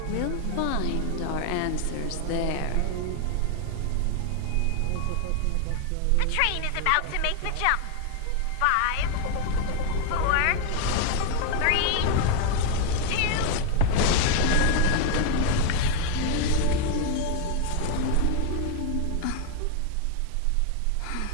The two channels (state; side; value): different; both; correlation 0.01